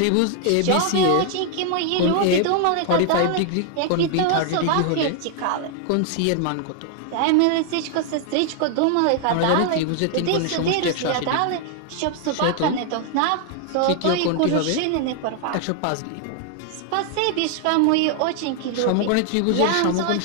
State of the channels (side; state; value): both; different; correlation 0.00